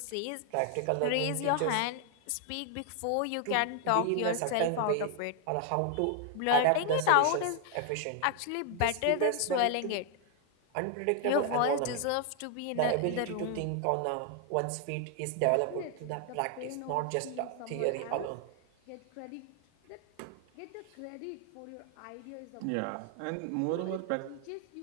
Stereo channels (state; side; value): different; both; correlation 0.00